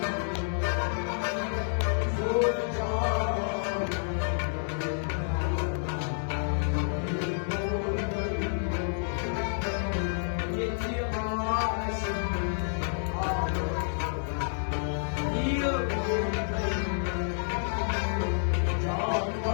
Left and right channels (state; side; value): silent; right; 58 dB below the other